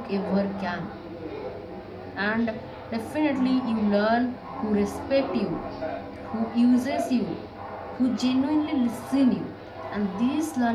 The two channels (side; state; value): both; identical; correlation 1.00